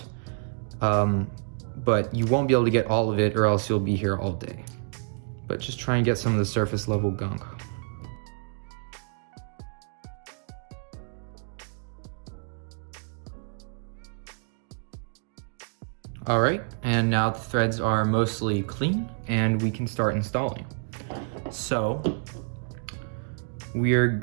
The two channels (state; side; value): silent; left; 59 dB below the other